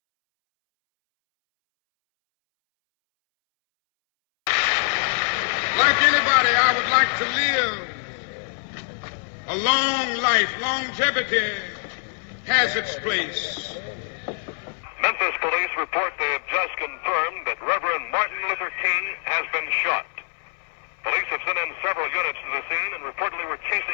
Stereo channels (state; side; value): silent; right; 62 dB below the other